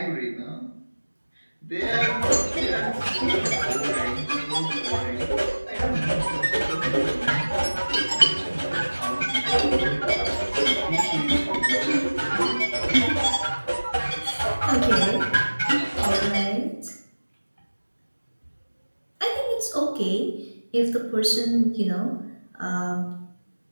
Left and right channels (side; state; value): both; inverted; correlation -1.00